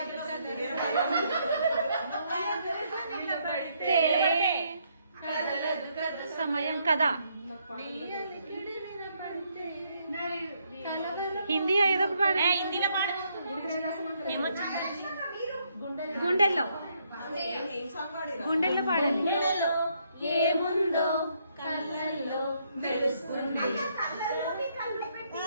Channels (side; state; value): both; inverted; correlation -0.73